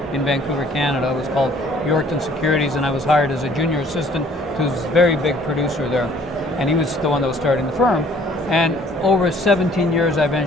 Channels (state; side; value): normal; both; correlation 0.57